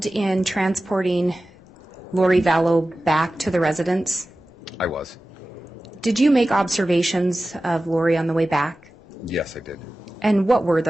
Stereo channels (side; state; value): both; normal; correlation 0.95